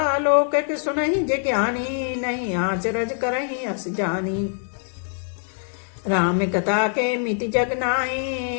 अलौकिक सुनहि जिज्ञानी, नहीं आचरज करहि अस जानी। राम कथा के मिति जगनाई,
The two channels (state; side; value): silent; right; 63 dB below the other